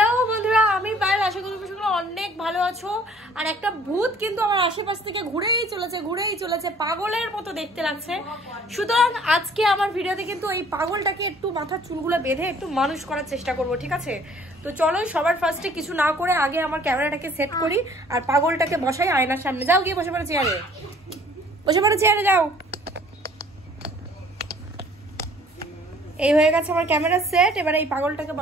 বন্ধুরা, আমি পায়েল। আশা করি তোমরা অনেক ভালো আছো। আর একটা ভূত কিন্তু আমার আশেপাশ থেকে ঘুরেই চলেছে, পাগলের মতো দেখতে লাগছে। সুতরাং আজকে আমার ভিডিওতে কিন্তু এই পাগলটাকে একটু মাথার চুলগুলো বেঁধে একটু মানুষ করার চেষ্টা করব, ঠিক আছে? তো চলো সবার ফার্স্টে কিছু না করে আগে আমার ক্যামেরাটাকে সেট করি আর পাগলটাকে বসাই আয়নার সামনে। যাও গিয়ে বসে পড়ো চেয়ারে, যাও। এই হয়ে গেছে আমার ক্যামেরা সেট। এবার এই পাগলটাকে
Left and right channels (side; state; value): both; normal; correlation 0.55